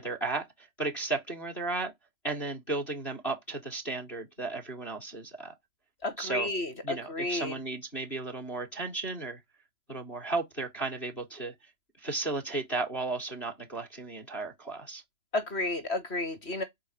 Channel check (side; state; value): right; late; 3.0 ms